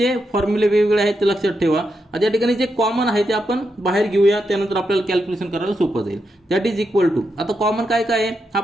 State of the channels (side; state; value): both; normal; correlation 0.84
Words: फॉर्म्युले वेगवेगळे आहेत ते लक्षात ठेवा. आता या ठिकाणी जे कॉमन आहे ते आपण बाहेर घेऊया, त्यानंतर आपल्याला कॅल्क्युलेशन करायला सोपं जाईल. दॅट इज इक्वल टू, आता कॉमन काय काय आहे, हा